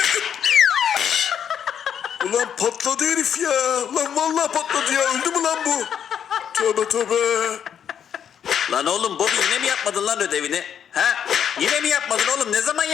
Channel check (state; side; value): quieter; right; 8.6 dB